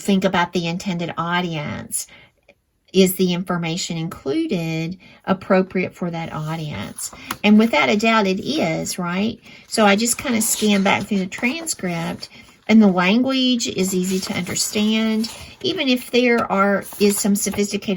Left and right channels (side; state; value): both; identical; correlation 1.00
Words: about the intended audience, is the information included appropriate for that audience? And without a doubt, it is, right? So I just kind of scan back through the transcript, and the language is easy to understand. Even if there is some